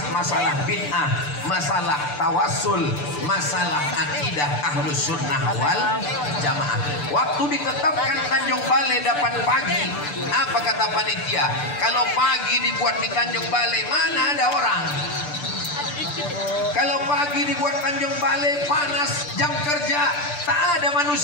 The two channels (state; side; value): late; right; 6.8 ms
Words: masalah bid'ah, masalah tawassul, masalah akidah ahlus sunnah wal jamaah. Waktu ditetapkan Tanjung Balai dapat pagi, apa kata panitia? Kalau pagi dibuat di Tanjung Balai, mana ada orang? Kalau pagi dibuat Tanjung Balai, panas, jam kerja, tak ada